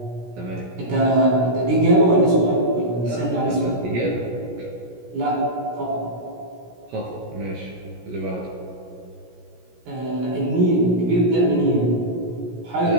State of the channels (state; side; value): late; left; 17 ms